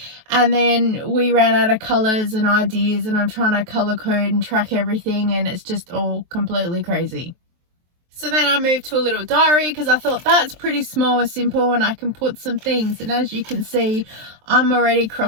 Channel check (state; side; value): late; left; 23 ms